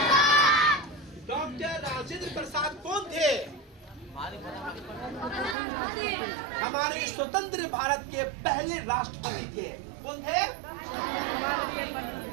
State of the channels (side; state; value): left; drops out; at 5.6 s